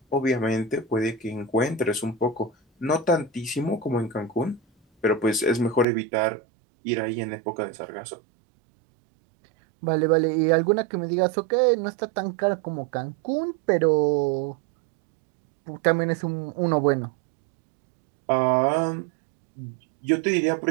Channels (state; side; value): drops out; left; at 5.9 s